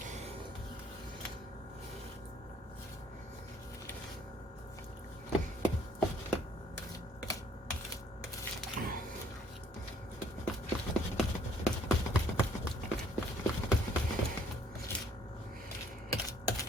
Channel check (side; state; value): both; normal; correlation 0.62